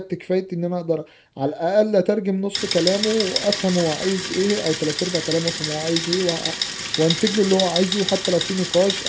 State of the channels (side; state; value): both; identical; correlation 1.00